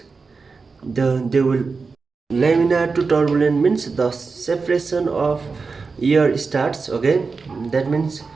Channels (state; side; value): quieter; left; 4.5 dB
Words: laminar to turbulent means the separation of air starts, okay. That means